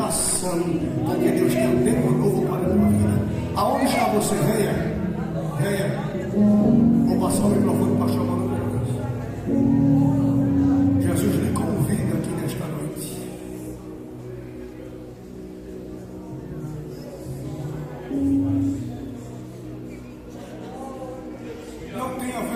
Porque Deus tem um tempo novo para a tua vida. Aonde está você? Venha. Venha. Vou passar o microfone para chamar no Deus. Jesus lhe convida aqui nesta noite. Não tenha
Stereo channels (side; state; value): both; identical; correlation 1.00